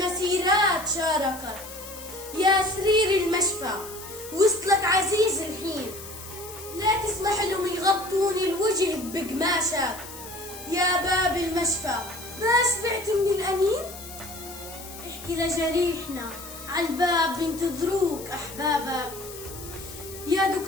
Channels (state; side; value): noise; left; hiss, 14 dB below the sound